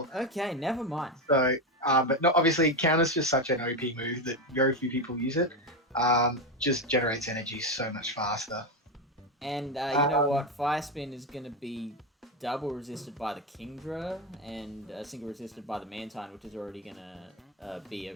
Okay, never mind. So, but not obviously counter's just such an OP move that very few people use it. Just generates energy so much faster. And you know what? Fire spin is going to be double resisted by the Kingdra and single resisted by the Mantine, which is already going to be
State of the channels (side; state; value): both; normal; correlation 0.12